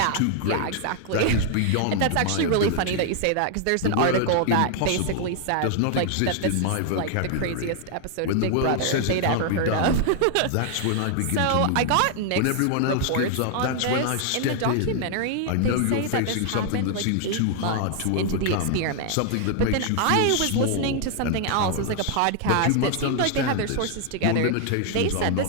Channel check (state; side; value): different; both; correlation 0.00